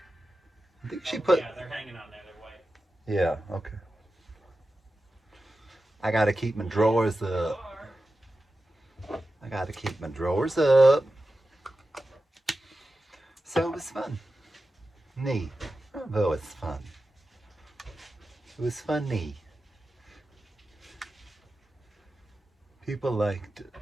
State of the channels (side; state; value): both; normal; correlation 0.93